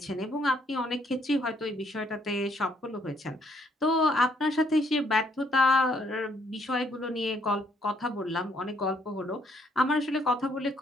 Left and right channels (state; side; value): normal; both; correlation 0.69